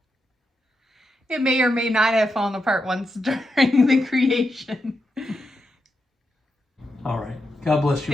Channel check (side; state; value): both; normal; correlation 0.86